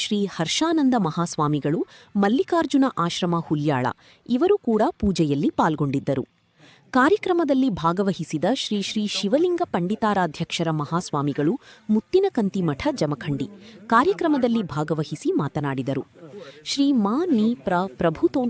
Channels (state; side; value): identical; both; correlation 1.00